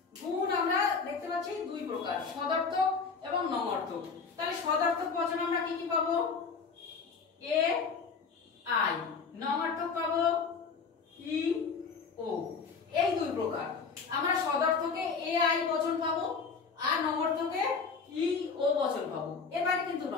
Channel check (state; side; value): quieter; right; 5.2 dB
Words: গুণ আমরা দেখতে পাচ্ছি দুই প্রকার, সদর্থক এবং নবার্থক। তাহলে সদর্থক বচন আমরা কি কি পাবো, এ আই, নবার্থক পাবো ই ও, এই দুই প্রকার। আমরা সদর্থকে এ আই বচন পাবো আর নবার্থকে ই ও বচন পাবো, এর বাইরে কিন্তু